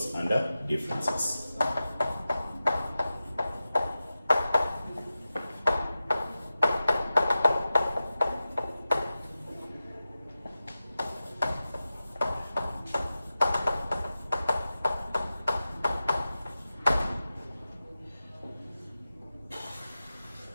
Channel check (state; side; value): inverted; both; correlation -0.93